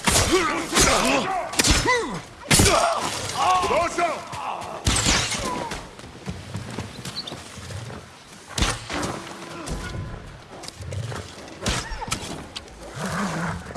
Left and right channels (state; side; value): identical; both; correlation 1.00